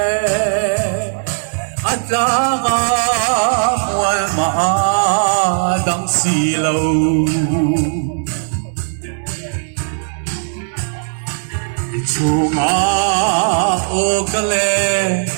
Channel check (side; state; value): left; silent; digital silence